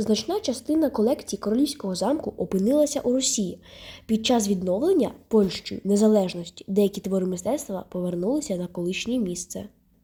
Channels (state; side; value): identical; both; correlation 1.00